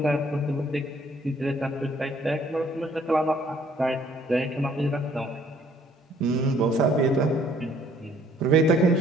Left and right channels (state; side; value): normal; both; correlation 0.61